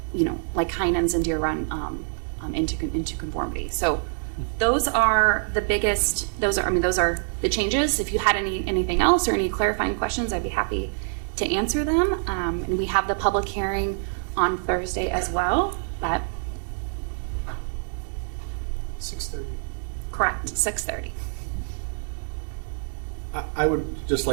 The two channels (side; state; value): left; silent; digital silence